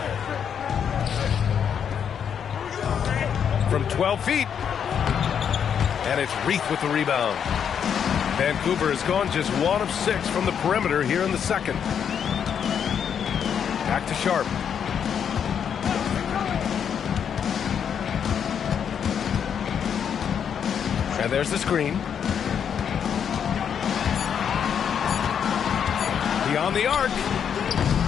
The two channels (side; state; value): right; quieter; 7.9 dB